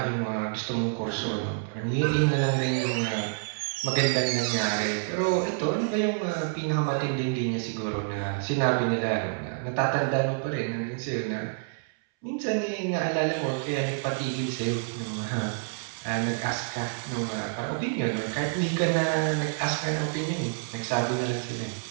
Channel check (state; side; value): silent; left; 59 dB below the other